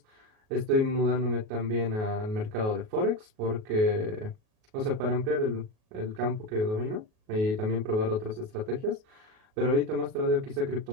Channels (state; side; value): late; left; 37 ms